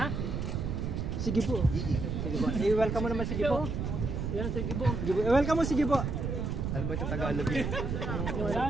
Sige po. Sige po. I-welcome mo naman si Gibo. Yan, si Gibo. I-welcome mo si Gibo. Ano ba ito Tagalog eh?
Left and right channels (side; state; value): right; noise; rumble, 2 dB below the sound